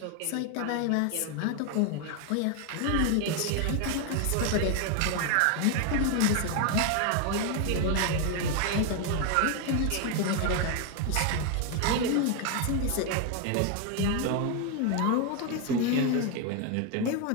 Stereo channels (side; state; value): both; different; correlation 0.01